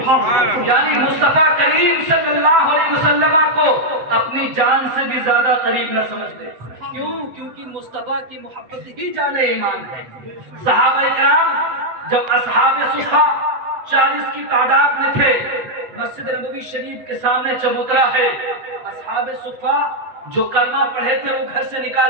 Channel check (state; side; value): late; left; 7.7 ms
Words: یعنی مصطفیٰ کریم صلی اللہ علیہ وسلم کو اپنی جان سے بھی زیادہ قریب نہ سمجھتے. کیوں؟ کیونکہ مصطفیٰ کی محبت ہی جان ایمان ہے. صحابہ کرام جب اصحاب صفا 40 کی تعداد میں تھے، مسجد نبوی شریف کے سامنے چبوترا ہے. اصحاب صفا جو کلمہ پڑھے تھے وہ گھر سے